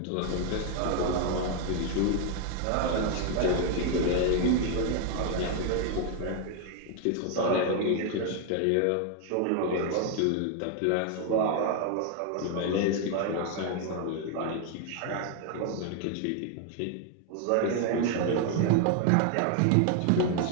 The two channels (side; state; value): both; different; correlation 0.00